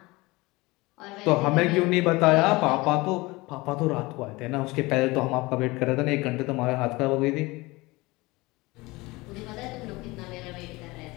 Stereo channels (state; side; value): quieter; right; 22.4 dB